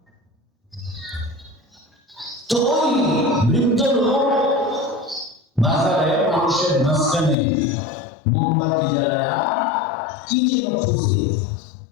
তো ওই বৃদ্ধ লোক বাজারে মানুষের মাঝখানে মোমবাতি জ্বালায়া কি যেন খুঁজে।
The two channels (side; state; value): right; drops out; at 7.4 s